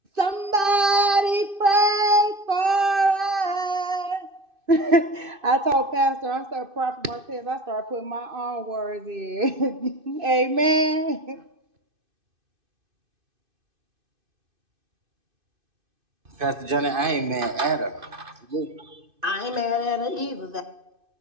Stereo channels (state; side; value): late; left; 2.5 ms